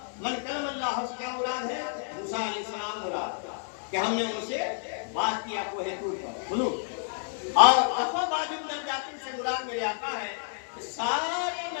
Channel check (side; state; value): right; silent; 58 dB below the other